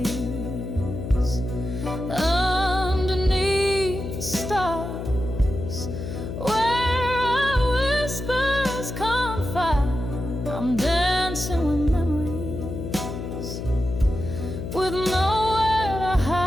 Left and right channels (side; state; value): left; noise; hum, 6 dB below the sound